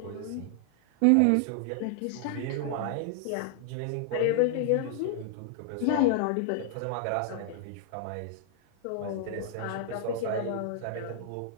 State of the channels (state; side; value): different; both; correlation 0.00